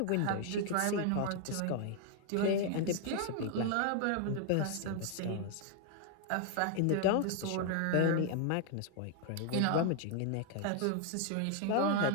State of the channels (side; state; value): both; different; correlation 0.00